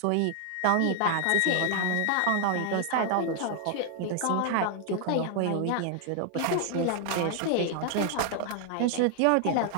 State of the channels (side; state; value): both; different; correlation 0.00